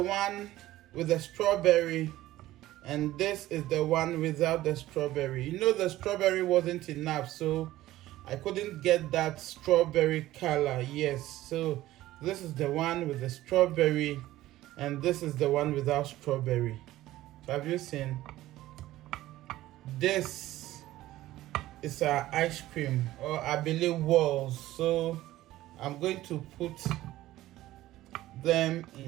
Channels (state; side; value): quieter; left; 15.6 dB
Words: one with the strawberry and this is the one without the strawberry. You know, the strawberry wasn't enough, so I couldn't get that strawberry color. Yes, so this is the one with the strawberry and this is the one without strawberry. So have you seen? This is our ice cream, or Abele walls. So I'm going to put them